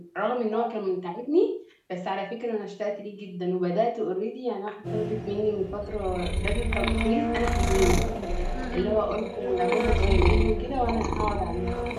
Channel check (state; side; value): identical; both; correlation 1.00